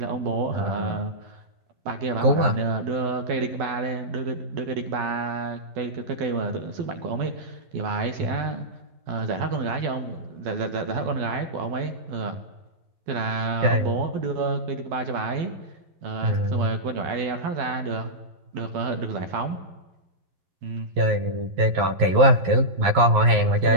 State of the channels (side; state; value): left; late; 11 ms